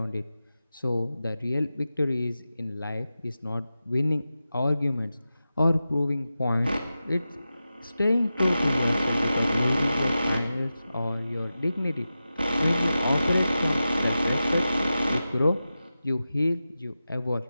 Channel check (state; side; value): inverted; both; correlation -0.92